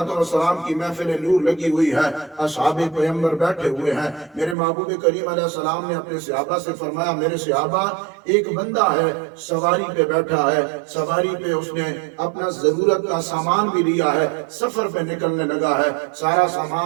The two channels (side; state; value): left; drops out; at 4.5 s